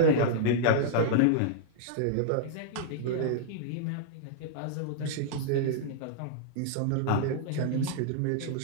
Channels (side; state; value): both; different; correlation -0.02